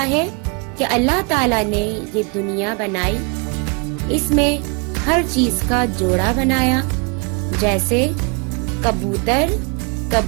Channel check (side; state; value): left; quieter; 31.5 dB